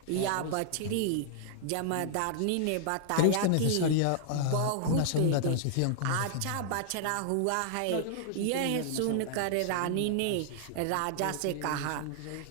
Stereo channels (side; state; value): both; different; correlation -0.01